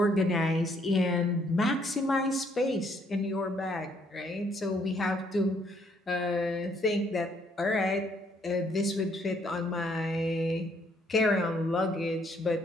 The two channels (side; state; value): both; normal; correlation 0.68